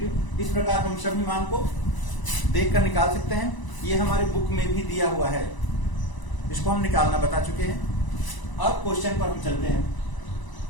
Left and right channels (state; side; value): late; right; 1.0 ms